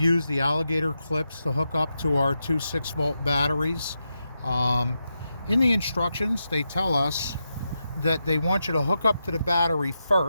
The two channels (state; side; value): inverted; both; correlation -0.87